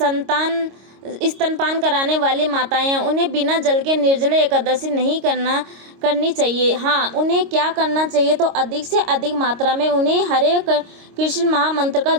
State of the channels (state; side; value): late; left; 26 ms